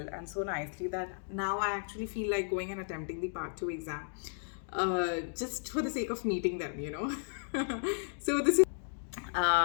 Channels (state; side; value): silent; right; digital silence